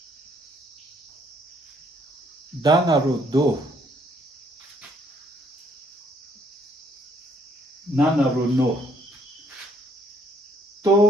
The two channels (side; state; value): both; normal; correlation 0.66